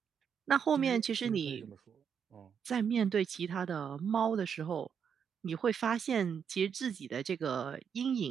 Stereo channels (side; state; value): left; quieter; 7.3 dB